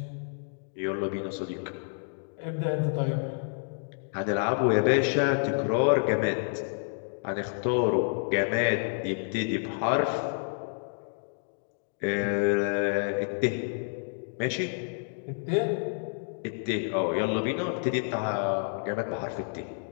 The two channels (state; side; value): silent; right; digital silence